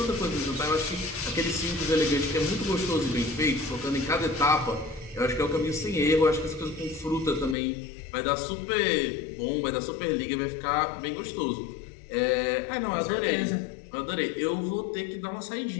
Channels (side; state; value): right; drops out; at 7.6 s